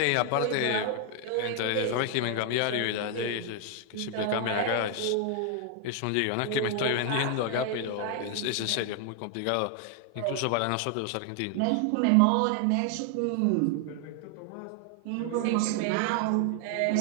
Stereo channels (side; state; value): both; different; correlation 0.00